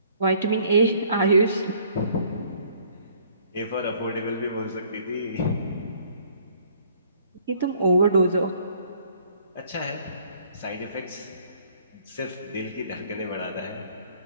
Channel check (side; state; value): both; inverted; correlation -0.59